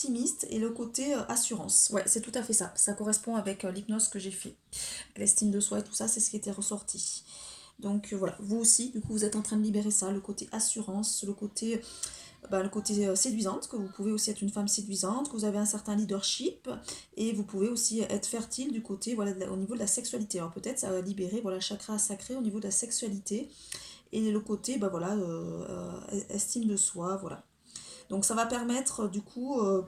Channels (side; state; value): both; identical; correlation 1.00